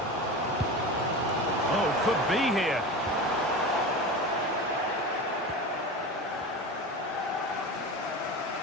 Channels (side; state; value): both; normal; correlation 0.28